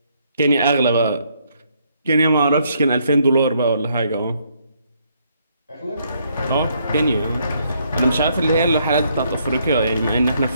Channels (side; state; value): both; inverted; correlation -0.71